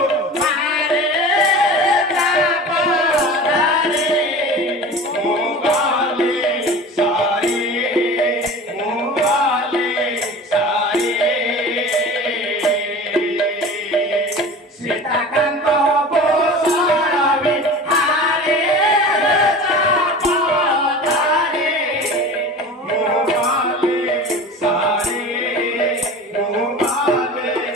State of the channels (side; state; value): both; normal; correlation 0.36